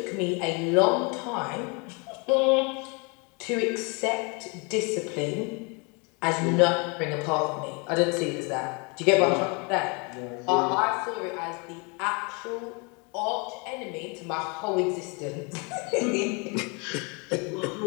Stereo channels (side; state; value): right; quieter; 31.9 dB